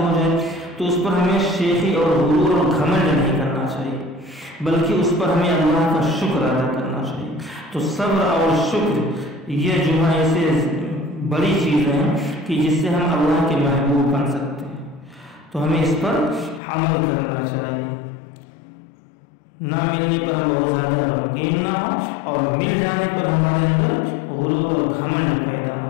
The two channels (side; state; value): right; drops out; at 16.6 s